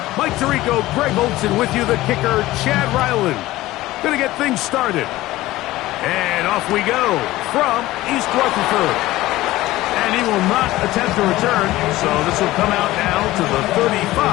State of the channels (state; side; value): quieter; right; 17.1 dB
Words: Mike Tirico, Greg Olson with you, the kicker, Chad Ryland. Gonna get things started. And off we go from East Rutherford. And he will not attempt to return, so this will come out now to the